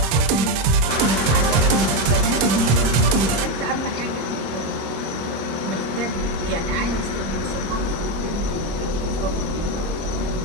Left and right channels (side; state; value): left; late; 26 ms